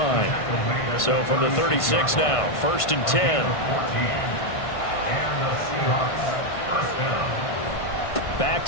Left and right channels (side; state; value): right; late; 1.5 ms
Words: So from the 36 now, 1st and 10. And the Seahawks first down. Back